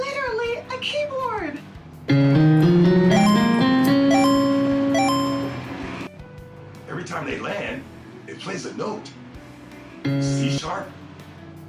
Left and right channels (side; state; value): both; identical; correlation 1.00